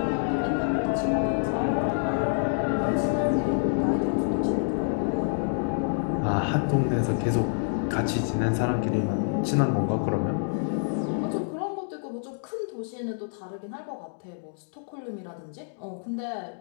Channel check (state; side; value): silent; right; digital silence